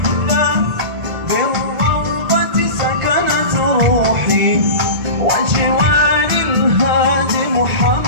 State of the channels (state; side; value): late; left; 1.5 ms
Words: بالروضة سكنت روحي وجوار الهادي